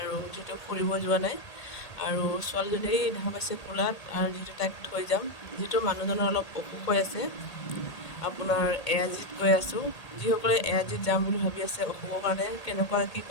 যিহেতু ফুৰিব যোৱা নাই। আৰু ছোৱালীজনী দেখা পাইছে কোলাত, আৰু যিহেতু তাইক থৈ যাম, যিহেতু মানুহজনৰ অলপ অসুখ হৈ আছে। আপোনাৰ এআৰজিত গৈ আছোঁ। যিসকলে এআৰজিত যাম বুলি ভাবি আছে অসুখৰ কাৰণে, কেনেকুৱা কি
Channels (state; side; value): late; right; 1.8 ms